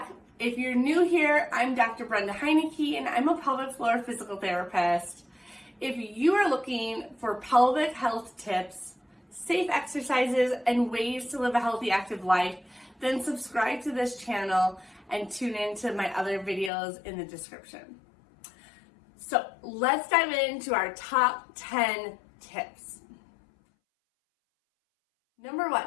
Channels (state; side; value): drops out; right; at 16.7 s